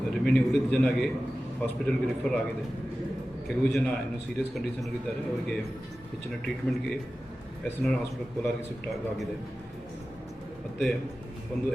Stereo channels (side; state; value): both; normal; correlation 0.95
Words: ರಿಮೈನಿಂಗ್ ಉಳಿದ ಜನಗೆ ಹಾಸ್ಪಿಟಲ್ಗೆ ರಿಫರ್ ಆಗಿದೆ. ಕೆಲವು ಜನ ಇನ್ನೂ ಸೀರಿಯಸ್ ಕಂಡೀಷನಲ್ಲಿದ್ದಾರೆ. ಅವರಿಗೆ ಹೆಚ್ಚಿನ ಟ್ರೀಟ್ಮೆಂಟ್ಗೆ SNR ಹಾಸ್ಪಿಟಲ್ ಕೋಲಾರ್ಗೆ ಶಿಫ್ಟ್ ಆಗಿದೆ. ಮತ್ತು ಒಂದು